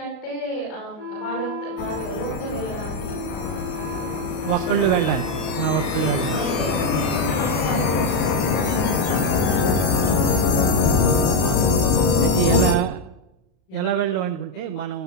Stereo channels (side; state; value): right; late; 32 ms